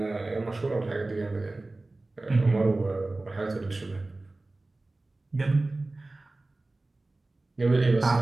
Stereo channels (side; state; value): left; quieter; 3.0 dB